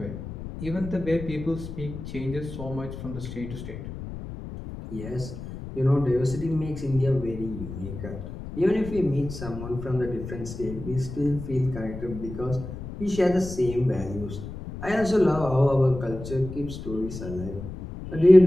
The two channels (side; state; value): left; noise; rumble, 10 dB below the sound